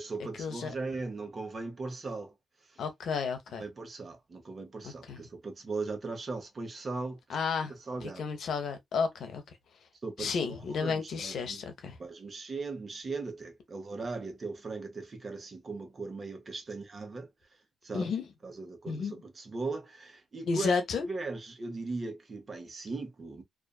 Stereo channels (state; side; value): normal; both; correlation 0.80